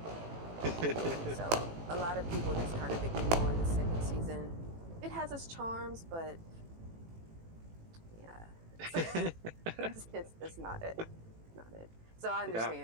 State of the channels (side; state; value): left; late; 18 ms